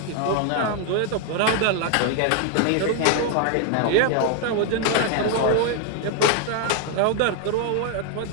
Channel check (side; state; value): both; different; correlation 0.00